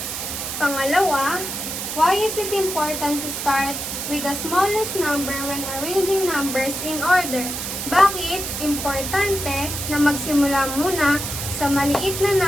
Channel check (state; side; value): noise; right; hiss, 5 dB below the sound